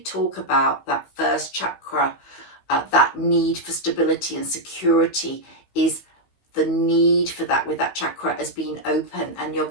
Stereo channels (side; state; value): right; late; 15 ms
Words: about? That first chakra, that need for stability and security, is the need for that with that chakra has been open, and you're